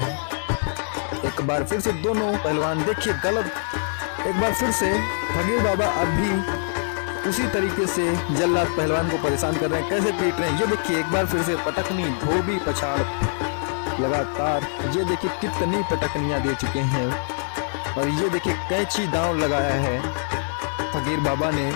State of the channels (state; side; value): silent; right; 61 dB below the other